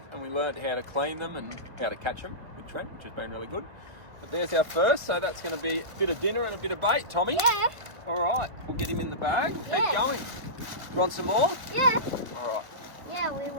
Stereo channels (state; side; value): late; left; 1.6 ms